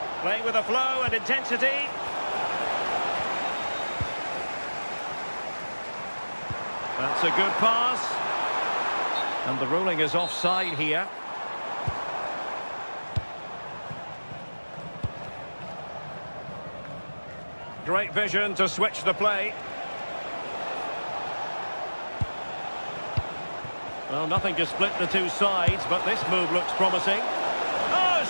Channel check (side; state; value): both; inverted; correlation -1.00